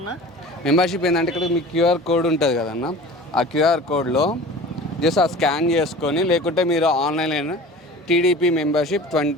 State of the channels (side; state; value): both; normal; correlation 0.40